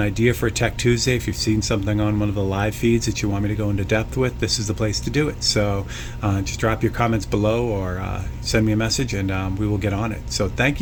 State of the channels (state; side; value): identical; both; correlation 1.00